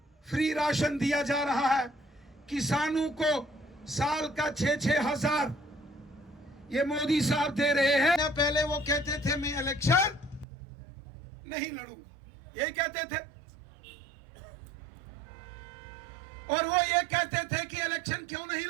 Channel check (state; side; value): drops out; left; at 10.5 s